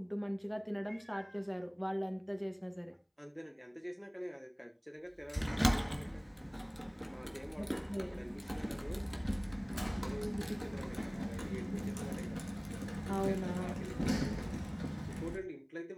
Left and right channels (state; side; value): identical; both; correlation 1.00